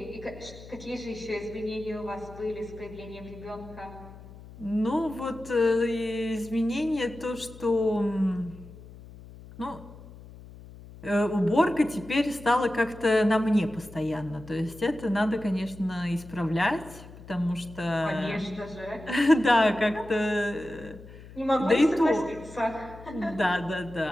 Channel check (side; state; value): left; noise; hum, 18 dB below the sound